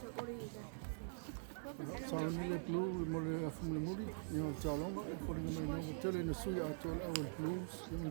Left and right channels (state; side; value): silent; left; digital silence